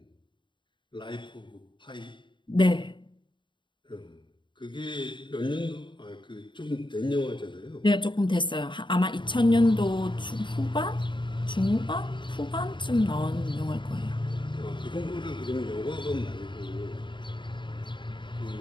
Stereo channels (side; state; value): right; late; 0.23 ms